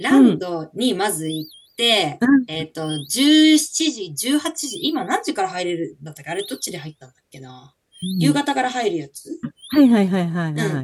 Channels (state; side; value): identical; both; correlation 1.00